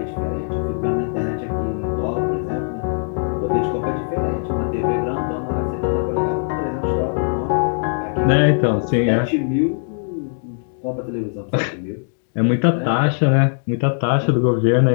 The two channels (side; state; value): right; silent; digital silence